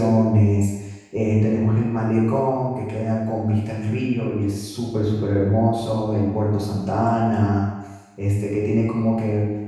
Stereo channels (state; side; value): identical; both; correlation 1.00